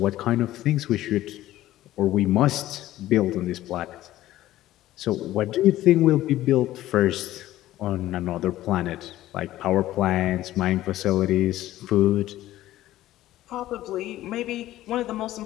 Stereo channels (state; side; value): quieter; right; 14.8 dB